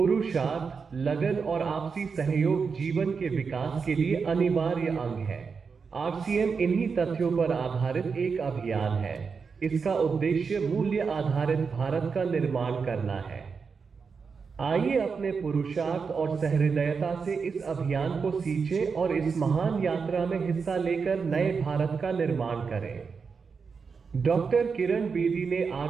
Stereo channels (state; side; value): quieter; left; 5.4 dB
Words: लगन और आपसी सहयोग जीवन के विकास के लिए अनिवार्य अंग है। आरसीएम इन्हीं तथ्यों पर आधारित एक अभियान है। इसका उद्देश्य मूल्य आधारित भारत का निर्माण करना है। आइए अपने पुरुषार्थ और सहृदयता से इस अभियान को सींचें और इस महान यात्रा में हिस्सा लेकर नए भारत का निर्माण करें। डॉक्टर किरण बेदी ने